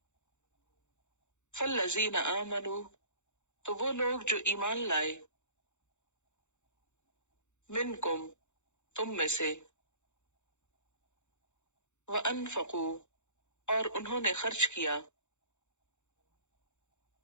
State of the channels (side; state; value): right; late; 0.83 ms